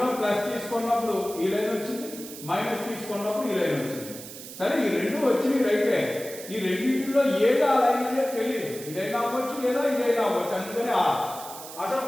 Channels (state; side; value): noise; right; hiss, 13 dB below the sound